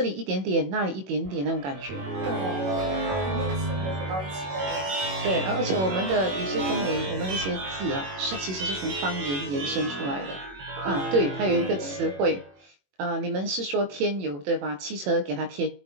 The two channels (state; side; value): late; left; 21 ms